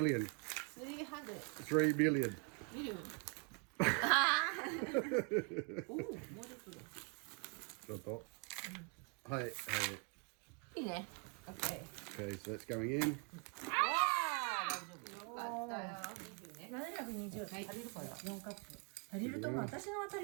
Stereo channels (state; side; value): quieter; left; 34.3 dB